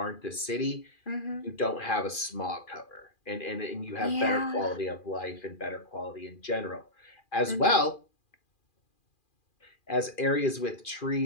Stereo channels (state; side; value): late; right; 2.4 ms